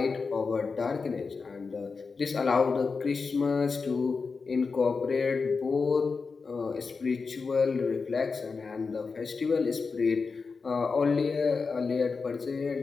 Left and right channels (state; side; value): quieter; right; 4.7 dB